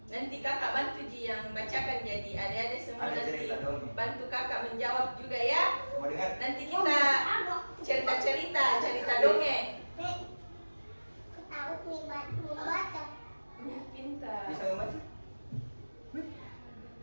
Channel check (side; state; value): both; inverted; correlation -1.00